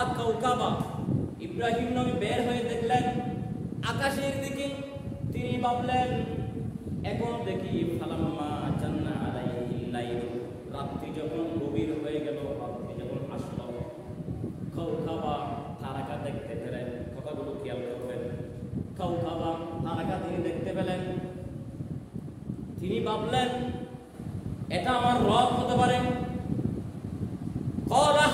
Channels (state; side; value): identical; both; correlation 1.00